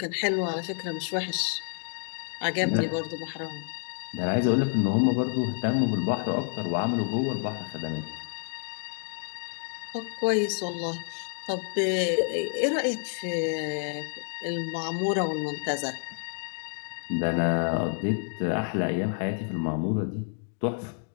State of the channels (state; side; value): silent; right; 59 dB below the other